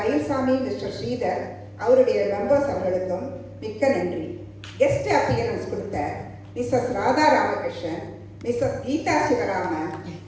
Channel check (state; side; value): identical; both; correlation 1.00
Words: மிஸ்டர் ஸ்ரீதர் அவருடைய மெம்பர்ஸ் அவர்களுக்கும் மிக்க நன்றி. கெஸ்ட் அப்பியரன்ஸ் கொடுத்த Mrs Radha Ramakrishnan, Mrs Geetha Sivaraman,